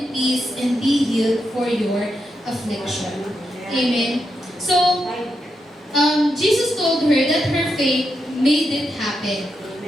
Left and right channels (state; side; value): normal; both; correlation 0.84